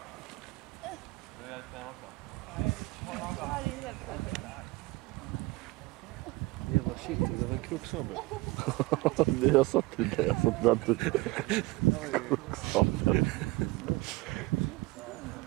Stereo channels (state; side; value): quieter; left; 21.6 dB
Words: Nu är det ben också. Jävla shit, det var en kroksabel. Jag sa till det, jag sa till att du... Kroksabel.